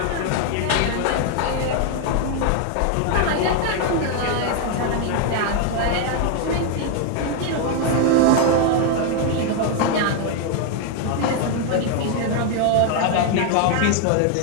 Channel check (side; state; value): both; different; correlation 0.01